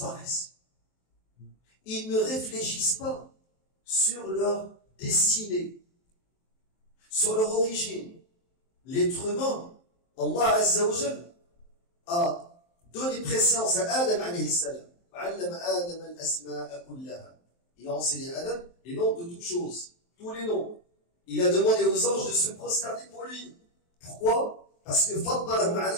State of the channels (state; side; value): late; right; 23 ms